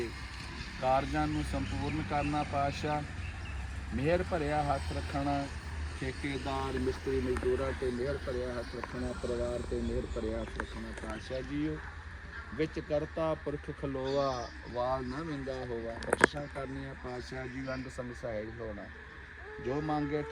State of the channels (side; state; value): both; identical; correlation 1.00